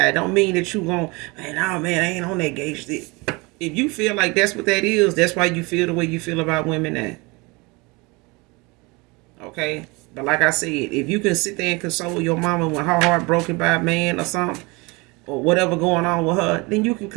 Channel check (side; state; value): left; quieter; 26.1 dB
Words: Don't mean that you gon', man, I ain't on that gauge. If you feel like that's what that is, that's why you feel the way you feel about women now. Okay? But like I said, if you can sit there and console your mama when her heart broken by a man or something, or whatever going on with her, then you can